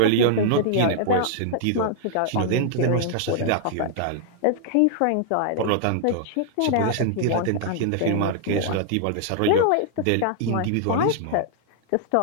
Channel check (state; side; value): different; both; correlation -0.01